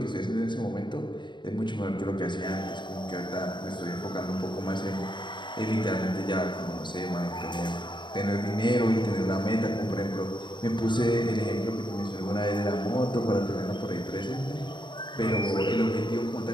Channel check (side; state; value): right; late; 0.22 ms